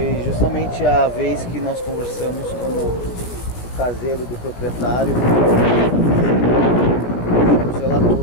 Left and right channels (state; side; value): late; right; 16 ms